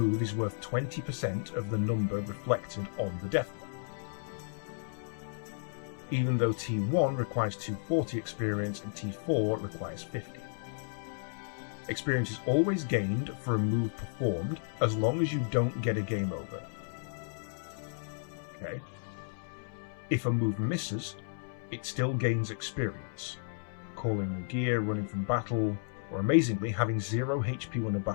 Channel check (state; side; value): silent; right; 56 dB below the other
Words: is worth 20% of the number reflected on the death blow. Even though T1 requires 240 experience and T4 requires 50. Experience is always gained for a move performed as long as you don't get a game over. Okay. If a move misses, it still gains experience. Calling a gear, running from battle, or amazingly, having 0 HP when a